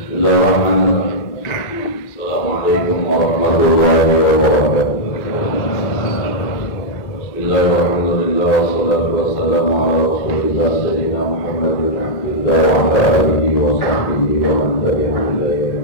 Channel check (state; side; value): late; right; 2.1 ms